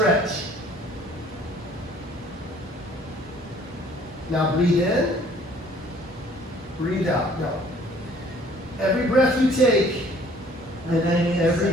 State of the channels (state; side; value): normal; both; correlation 0.56